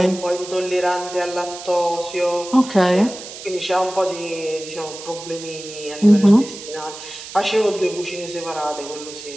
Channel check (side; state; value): right; noise; hiss, 13 dB below the sound